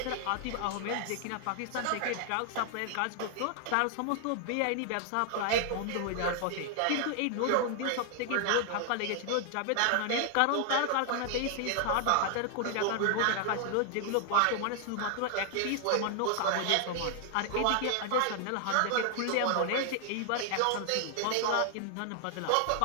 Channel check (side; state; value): both; different; correlation 0.00